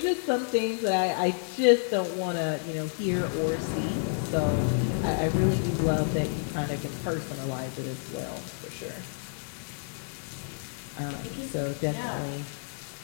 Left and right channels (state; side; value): silent; right; 58 dB below the other